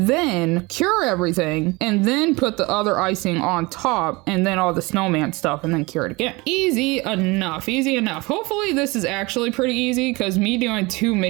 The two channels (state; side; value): quieter; left; 24.2 dB